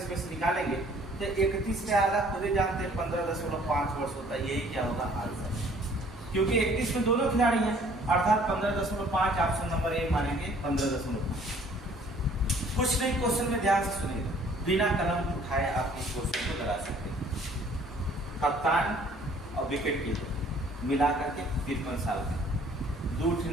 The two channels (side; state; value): both; normal; correlation 0.56